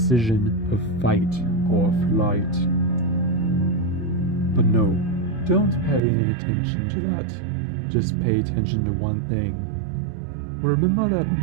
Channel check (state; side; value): drops out; left; at 6.0 s